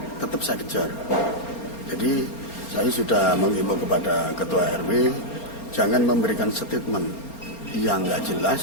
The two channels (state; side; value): late; right; 4.3 ms